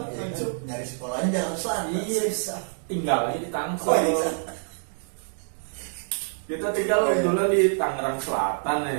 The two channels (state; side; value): silent; left; digital silence